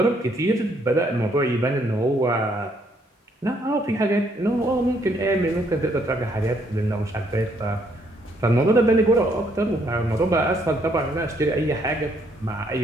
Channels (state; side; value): normal; both; correlation 0.69